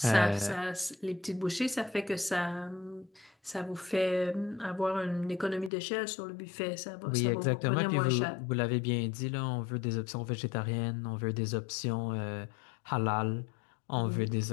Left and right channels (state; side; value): drops out; right; at 5.7 s